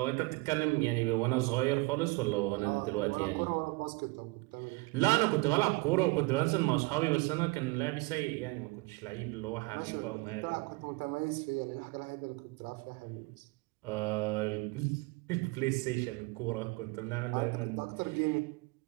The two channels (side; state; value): left; quieter; 25.0 dB